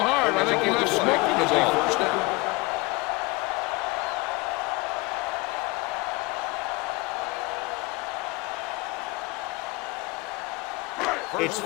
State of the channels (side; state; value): right; quieter; 23.8 dB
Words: I think he left smoke in the ball. First down. It's